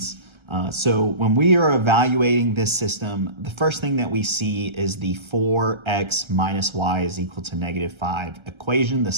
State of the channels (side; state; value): left; late; 1.3 ms